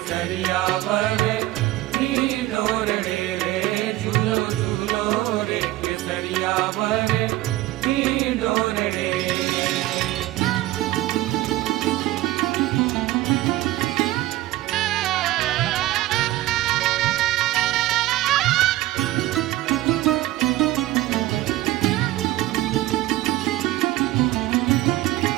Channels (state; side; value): quieter; left; 16.6 dB